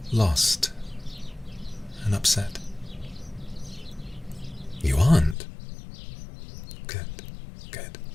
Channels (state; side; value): drops out; right; at 5.4 s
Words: lost and upset. You aren't? Good, good.